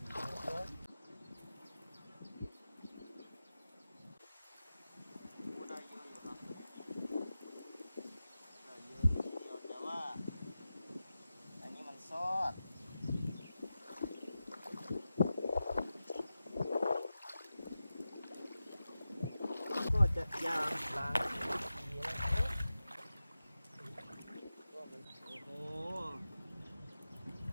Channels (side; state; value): both; inverted; correlation -0.93